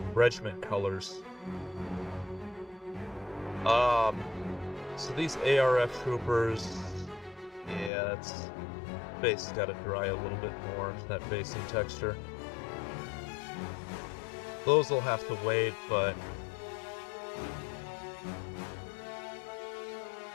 regiment colors. So these ARF troopers, yeah, it's base got to dry a little bit more, that basing texture. Those will have to wait, but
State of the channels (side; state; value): right; drops out; at 7.9 s